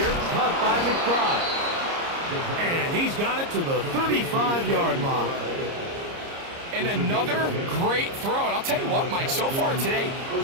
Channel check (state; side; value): late; left; 30 ms